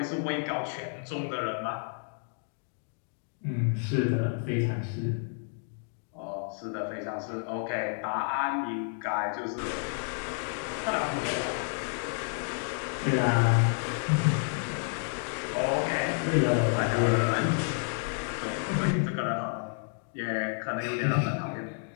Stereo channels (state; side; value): silent; right; 58 dB below the other